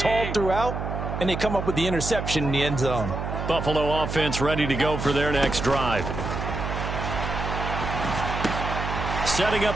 throughout, and they come up with the interception in the end zone. Buffalo offense ready to go for their next drive. Setting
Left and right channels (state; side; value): noise; right; hum, 4 dB below the sound